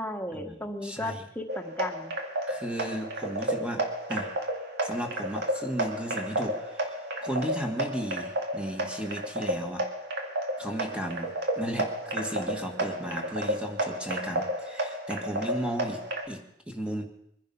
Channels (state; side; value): normal; both; correlation 0.12